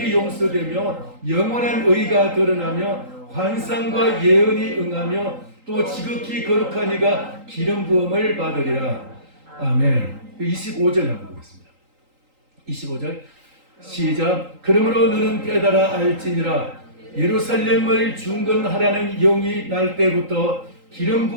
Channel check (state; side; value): late; left; 3.8 ms